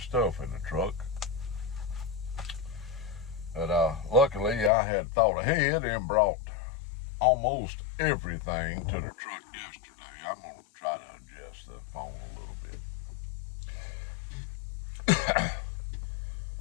stuff in the truck. But luckily, I had thought ahead and brought almost everything to the truck yesterday. I'm going to try to adjust the phone a little bit.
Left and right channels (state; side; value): drops out; right; at 4.7 s